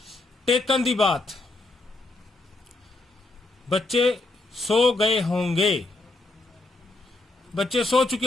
taken the bath. बच्चे सो गए होंगे, बच्चे सो चुके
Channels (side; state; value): right; quieter; 3.0 dB